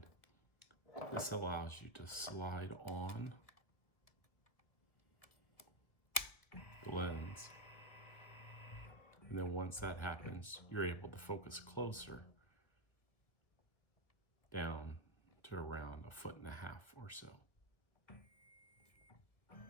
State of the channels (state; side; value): late; right; 1.4 ms